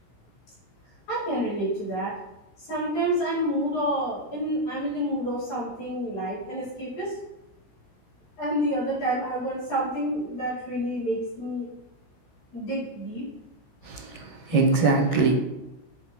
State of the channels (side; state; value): right; late; 16 ms